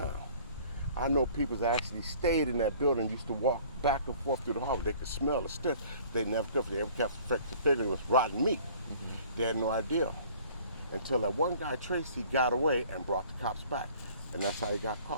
I know people that actually stayed in that building, used to walk back and forth through the hall. They could smell the stench. They never could. They ever kept figuring it was rotten meat. They had no idea. Until that one guy, Tracy, got away and brought the cops back. And that's how he got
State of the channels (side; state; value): both; inverted; correlation -0.52